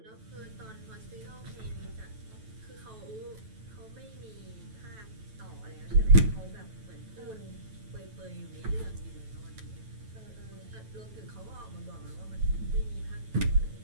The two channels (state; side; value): late; left; 9.2 ms